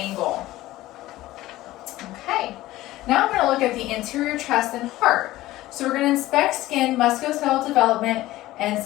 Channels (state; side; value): quieter; right; 16.5 dB